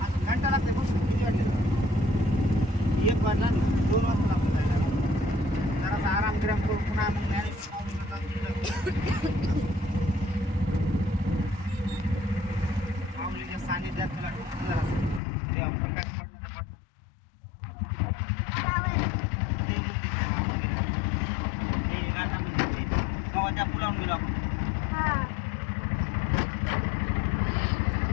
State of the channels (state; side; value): drops out; right; at 15.2 s